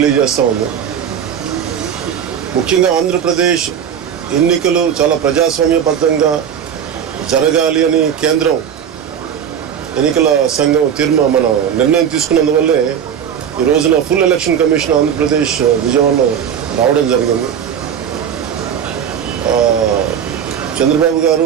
ఉంది. ముఖ్యంగా ఆంధ్రప్రదేశ్ ఎన్నికలు చాలా ప్రజాస్వామ్యబద్ధంగా జరగాలి అని కేంద్రం ఎన్నికల సంఘం మన నిర్ణయం తీసుకున్నందువల్లే ఈ రోజున ఫుల్ ఎలక్షన్ కమిషన్ ఆంధ్రప్రదేశ్ విజయవాడలో రావడం జరిగింది. చంద్రబాబు గారు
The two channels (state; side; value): quieter; left; 8.5 dB